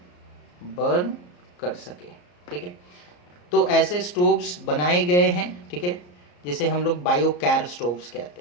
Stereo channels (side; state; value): right; late; 34 ms